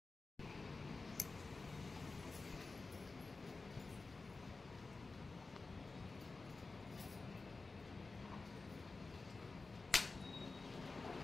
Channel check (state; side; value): quieter; right; 3.8 dB